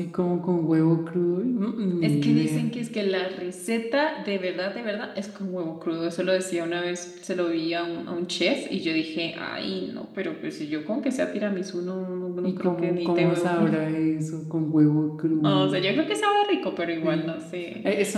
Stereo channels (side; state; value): both; identical; correlation 1.00